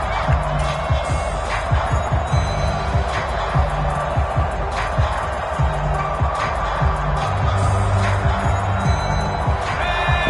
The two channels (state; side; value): identical; both; correlation 1.00